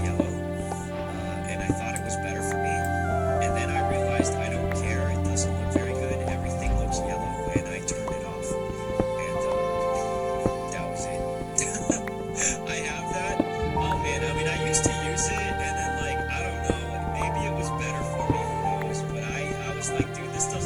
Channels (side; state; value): both; identical; correlation 1.00